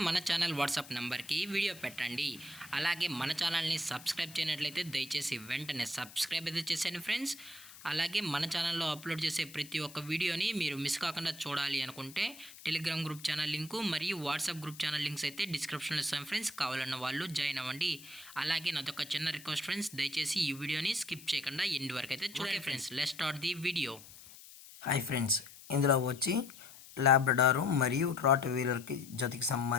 మన ఛానల్ వాట్సాప్ నెంబర్కి వీడియో పెట్టండి. అలాగే మన ఛానల్ని సబ్స్క్రైబ్ చేయనట్లయితే దయచేసి వెంటనే సబ్స్క్రైబ్ అయితే చేసేయండి ఫ్రెండ్స్. అలాగే మన ఛానల్లో అప్లోడ్ చేసే ప్రతి ఒక్క వీడియోని మీరు మిస్ కాకుండా చూడాలి అనుకుంటే టెలిగ్రామ్ గ్రూప్ ఛానల్ లింకు మరియు వాట్సాప్ గ్రూప్ ఛానల్ లింక్స్ అయితే డిస్క్రిప్షన్లో ఇస్తాం ఫ్రెండ్స్. కావాలన్న వాళ్ళు జాయిన్ అవ్వండి. అలాగే నాదొక చిన్న రిక్వెస్ట్ ఫ్రెండ్స్, దయచేసి ఈ వీడియోని స్కిప్ చేయకుండా ఎండ్ వరకు అయితే చూడండి friends. Let's start the video. Hi friends, ఇందులో వచ్చి లాబ్రడారు మరియు రాట్ వీలర్కి జతకి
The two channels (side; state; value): left; noise; hiss, 18 dB below the sound